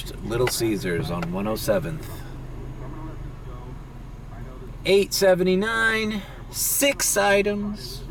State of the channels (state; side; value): identical; both; correlation 1.00